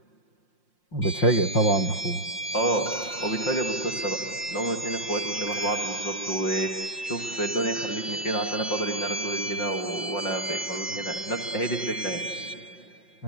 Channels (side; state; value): right; late; 5.7 ms